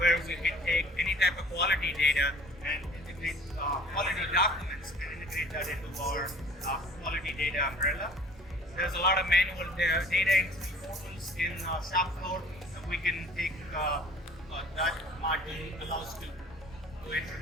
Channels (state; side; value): normal; both; correlation 0.50